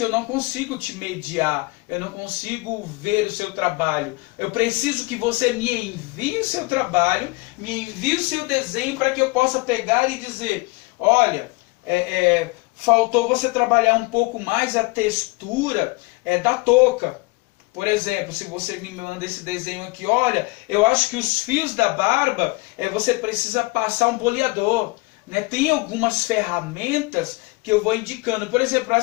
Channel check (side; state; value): right; quieter; 25.3 dB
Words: eu não consigo te mediar, eu não consigo ver o seu trabalho. Eu preciso que você me envie o seu trabalho, me envie o seu desenho para que eu possa pegar e dizer: olha, faltou você trabalhar um pouco mais a textura da touca. Por exemplo, se você me manda esse desenho aqui: olha, eu acho que os fios da barba, você precisa passar um boleador. Né? Tem algumas ferramentas que eu vou indicando. Por exemplo,